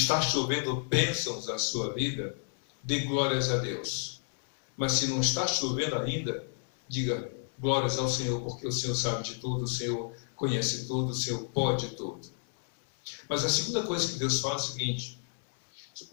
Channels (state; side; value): silent; right; 57 dB below the other